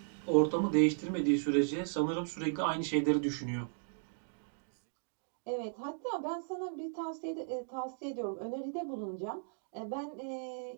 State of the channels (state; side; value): silent; left; digital silence